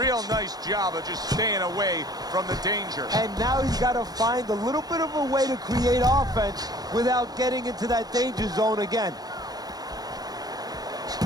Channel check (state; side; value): late; left; 0.19 ms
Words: nice job of just staying away from the danger. And now he's got to find a little bit of a way to create offense without getting into that danger zone again.